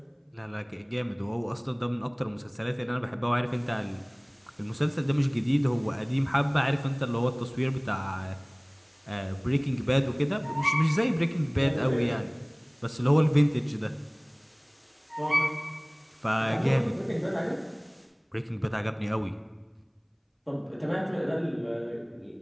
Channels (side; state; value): both; identical; correlation 1.00